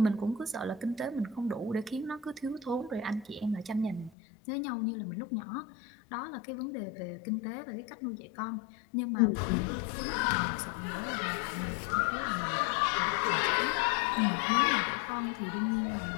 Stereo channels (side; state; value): right; drops out; at 4.1 s